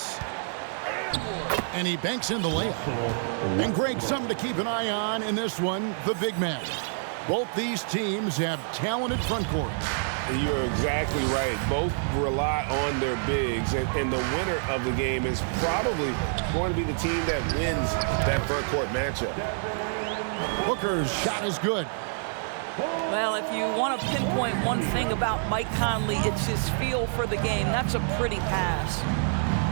And he banks in the layup. And Greg, something to keep an eye on in this one, the big man. Both these teams have talented front courts. You're exactly right. Both rely on their bigs, and the winner of the game is probably going to be the team that wins that front court matchup. Booker's shot is good. Well, if you want to pinpoint one thing about Mike Conley, it's his feel for the game. That's a pretty pass.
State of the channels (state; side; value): silent; left; 60 dB below the other